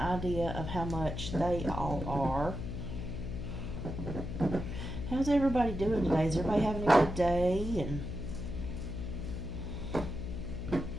of how much they all are. How's everybody doing today? Is everybody having a good day? And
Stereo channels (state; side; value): noise; left; hum, 5 dB below the sound